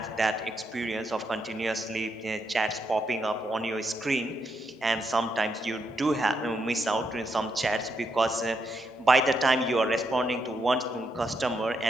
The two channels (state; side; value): normal; both; correlation 0.80